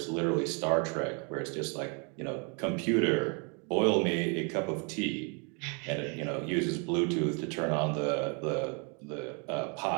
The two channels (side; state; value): left; quieter; 34.8 dB